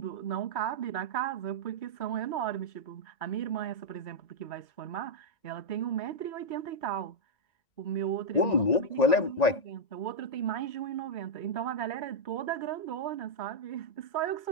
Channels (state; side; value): late; right; 1.9 ms